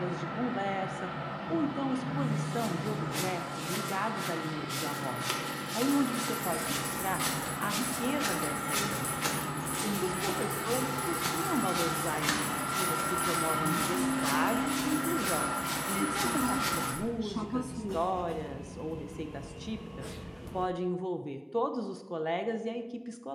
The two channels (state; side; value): identical; both; correlation 1.00